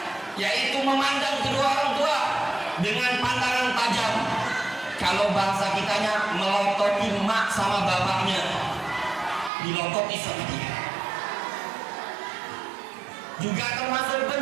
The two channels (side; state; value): left; drops out; at 9.5 s